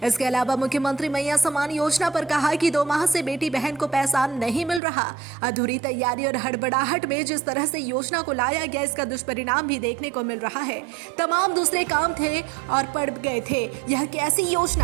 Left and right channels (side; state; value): left; drops out; at 4.8 s